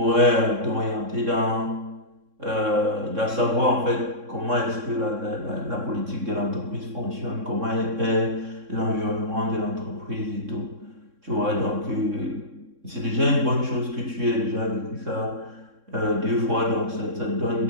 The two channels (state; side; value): late; left; 3.6 ms